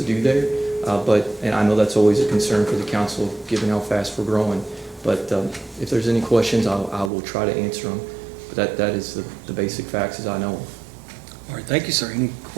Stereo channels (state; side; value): drops out; left; at 7.1 s